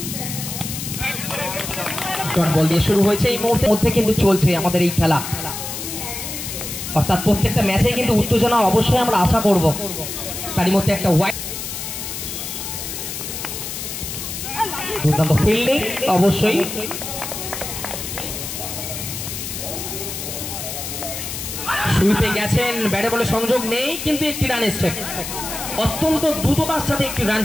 বল দিয়ে শুরু হয়েছে এই মুহূর্তের মধ্যে কিন্তু চলছে আমাদের এই খেলা, অর্থাৎ প্রত্যেকটা ম্যাচেই কিন্তু উত্তেজনা অবশ্যই আমরা আশা করব। তারই মধ্যে একটা ওয়াইড দুর্দান্ত ফিল্ডিং অবশ্যই। সুইপে গেছেন, ব্যাটে বলে সংযোগ নেই, কিন্তু একটি রান এসছে, অত্যন্ত দ্রুততার সাথে একটি রান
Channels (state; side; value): noise; left; hiss, 6 dB below the sound